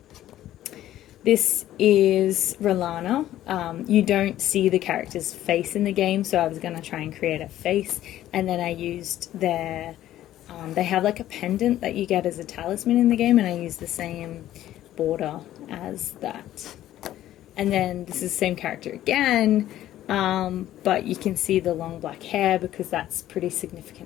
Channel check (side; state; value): right; quieter; 13.2 dB